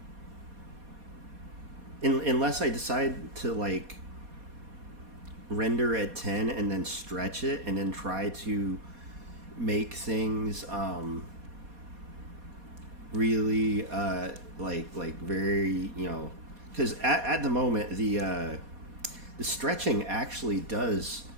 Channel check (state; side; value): late; left; 4.2 ms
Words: unless I decide to like render at 10 and then stretch it and then try to make things really like very, you know, because at the moment the stretching actually does